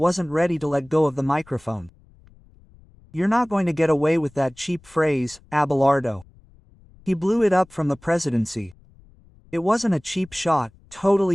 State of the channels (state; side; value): noise; left; rumble, 27 dB below the sound